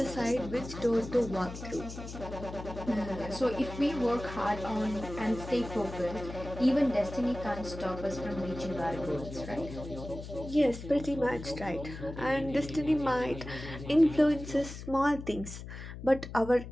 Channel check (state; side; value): noise; left; hum, 11 dB below the sound